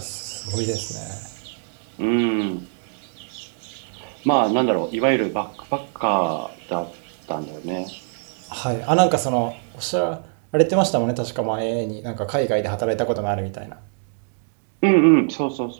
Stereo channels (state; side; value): silent; left; digital silence